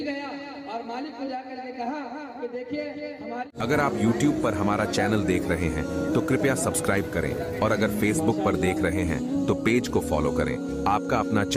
गया और मालिक को जाकर के कहा कि देखिए हमारे। अगर आप YouTube पर हमारा चैनल देख रहे हैं तो कृपया सब्सक्राइब करें, और अगर Facebook पर देख रहे हैं तो पेज को फॉलो करें। आपका अपना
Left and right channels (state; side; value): identical; both; correlation 1.00